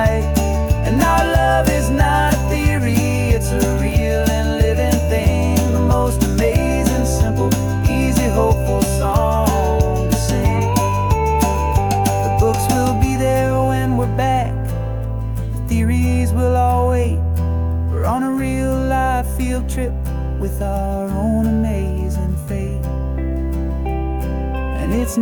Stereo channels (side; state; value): both; identical; correlation 1.00